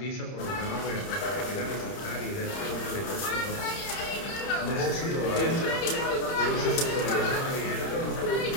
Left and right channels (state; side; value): late; right; 30 ms